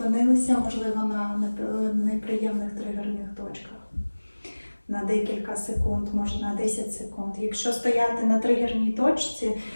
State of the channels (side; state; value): both; inverted; correlation -1.00